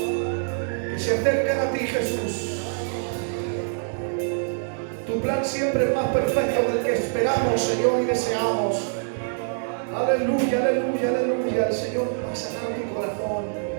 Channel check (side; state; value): left; silent; digital silence